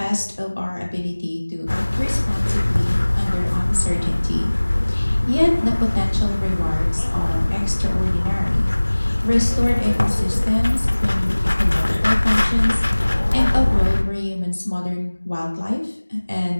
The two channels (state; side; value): inverted; both; correlation -1.00